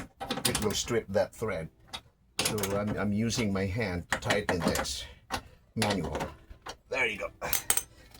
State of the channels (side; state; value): both; identical; correlation 1.00